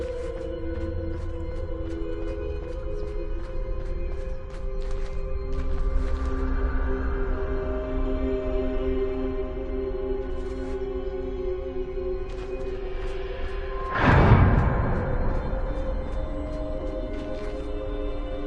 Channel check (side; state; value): both; identical; correlation 1.00